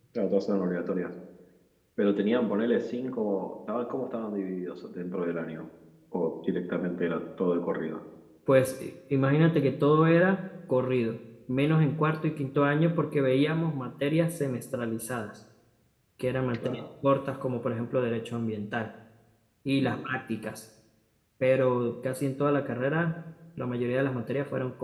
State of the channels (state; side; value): identical; both; correlation 1.00